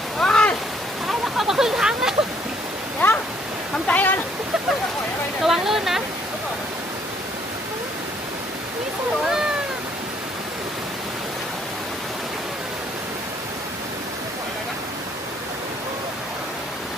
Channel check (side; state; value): both; normal; correlation 0.65